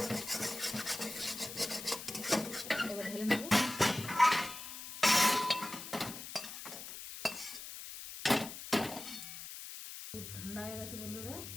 এবার ঢেলে নেব। ঠান্ডা হয়ে গেছে বন্ধুরা,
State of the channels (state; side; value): noise; left; hiss, 10 dB below the sound